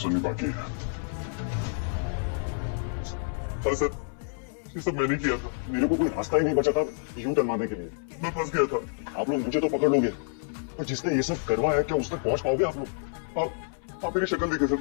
बाकी है। सर, ये सब मैंने किया था। मेरे को कोई रास्ता ही नहीं बचा था यूं टर्न मारने के लिए। मैं फंस गया था। आप लोग मुझे तो पकड़ लोगे, पर जिसने ये सब करवाया क्या उस तक पहुंच पाओगे आप लोग? आप मेरी शक्ल देखे सर,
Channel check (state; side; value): silent; right; 59 dB below the other